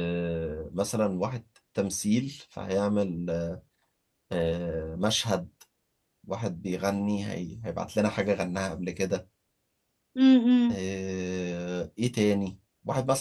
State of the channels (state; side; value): identical; both; correlation 1.00